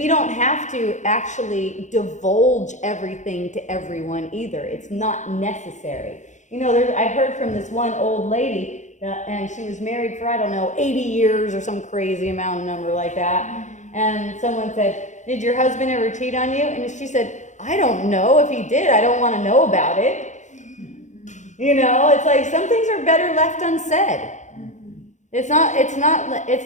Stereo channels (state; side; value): late; right; 0.35 ms